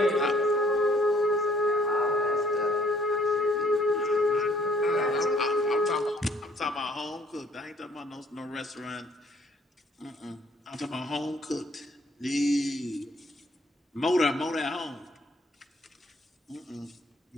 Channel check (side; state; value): both; normal; correlation 0.62